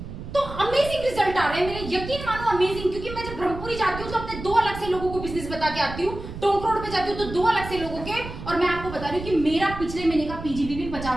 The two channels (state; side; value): noise; right; rumble, 10 dB below the sound